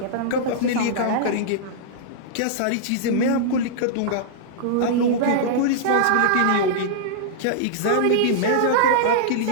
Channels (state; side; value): different; both; correlation -0.02